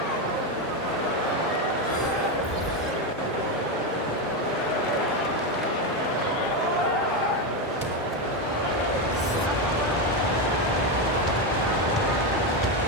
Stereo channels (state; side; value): normal; both; correlation 0.10